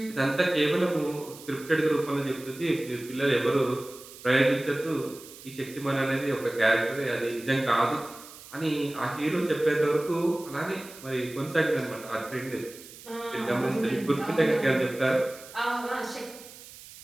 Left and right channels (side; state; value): right; noise; hiss, 17 dB below the sound